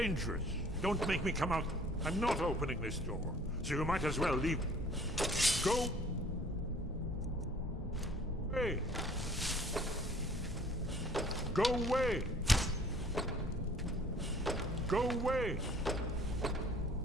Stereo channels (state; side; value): normal; both; correlation 0.54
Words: Don't make me come out. I'm not opening this door, so you might as well leave. Go away. Go away. Go away.